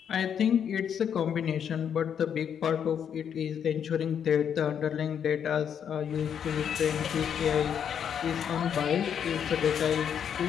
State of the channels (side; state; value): right; quieter; 8.2 dB